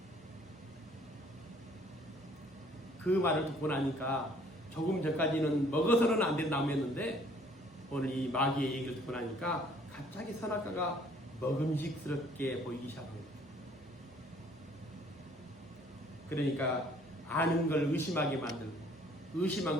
그 말을 듣고 나니까 조금 전까지는 먹어서는 안 된 나무였는데 오늘 이 마귀의 얘기를 듣고 나니까 갑자기 선악과가 먹음직스럽게 보이기 시작합니다. 그러니까 아는 걸 의심하게 만들고 의심한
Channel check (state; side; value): normal; both; correlation 0.59